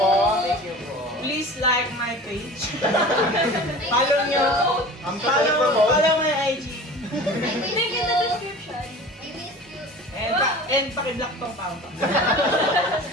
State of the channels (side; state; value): both; normal; correlation 0.39